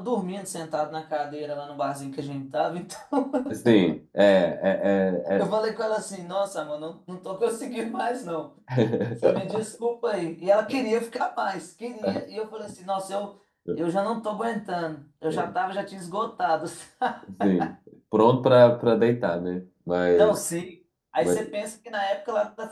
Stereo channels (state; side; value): identical; both; correlation 1.00